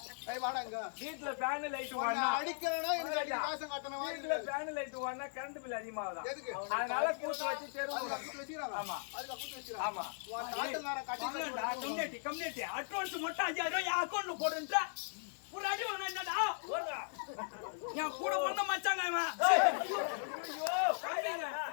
வாடாங்க வீட்டுல ஃபேன் லைட் அடிக்கணும். எனக்கு அடி காசம் கட்டணும். வீட்டுல ஃபேன் லைட் ஓடனா கரண்ட் பில் அதிகமாகுது. எதுக்கு? அதனால கூட்டு வச்சு தெருவுல வச்சிராங்க. ஆமா அதுக்கு கூட்டு வச்சிராங்க. ஆமா உன் நாட்டுக்காரன் கட்டி கம்யூனிட்டி அட்வான்ஸ் மட்டும் 5000 ரூபாய் அக்கௌண்ட்ல போடுன்றா. ஒரு அடி வாங்க என்னடா ஓடுறா. நான் கூட பண்ண மச்சாங்க இவன்.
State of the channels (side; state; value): right; silent; digital silence